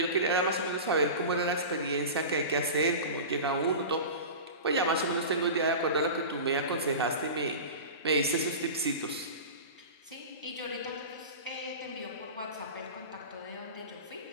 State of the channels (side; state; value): both; inverted; correlation -0.31